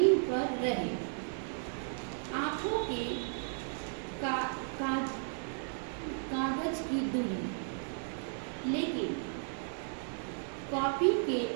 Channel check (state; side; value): silent; left; 55 dB below the other